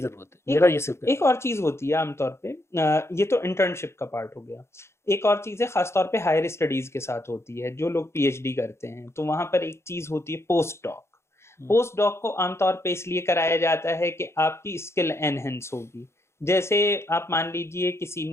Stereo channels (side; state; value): right; late; 0.13 ms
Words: है। मेरा ये सिर्फ एक और चीज होती है आमतौर पे, ये तो इंटर्नशिप का पार्ट हो गया। एक और चीज है खासतौर पे हायर स्टडीज के साथ होती है, जो लोग पीएचडी करते हैं तो वहां पर एक चीज होती है पोस्ट डॉक। पोस्ट डॉक को आमतौर पे इसलिए कराया जाता है कि आपकी स्किल एनहेंस होगी। जैसे आप मान लीजिए किसी